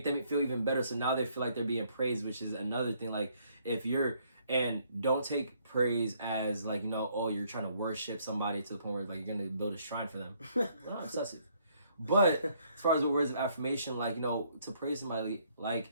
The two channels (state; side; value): inverted; both; correlation -0.67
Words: them feel even better. So now they feel like they're being praised, which is another thing. Like and don't take praise as like, oh, you're trying to worship somebody to the point where like you're going to build a shrine for them. Not obsessive. But as far as the words of affirmation, like, to praise somebody,